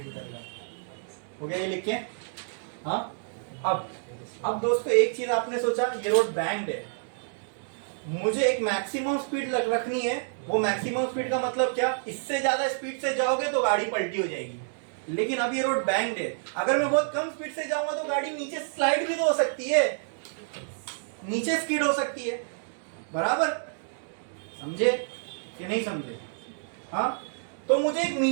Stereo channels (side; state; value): left; silent; digital silence